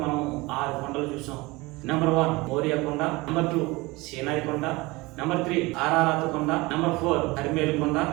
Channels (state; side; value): quieter; left; 22.8 dB